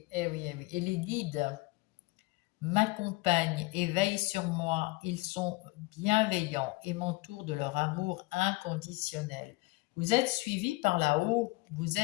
eh oui, eh oui. Et les guides m'accompagnent et veillent sur moi. Ils sont bienveillants et m'entourent de leur amour inconditionnel. Vous êtes suivis par là-haut, vous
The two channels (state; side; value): quieter; right; 23.9 dB